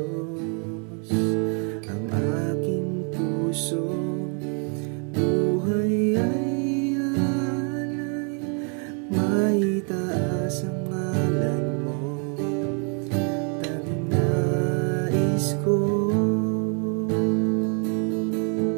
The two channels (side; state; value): left; quieter; 39.3 dB